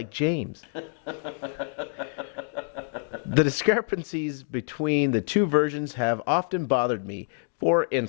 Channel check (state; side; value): silent; right; 60 dB below the other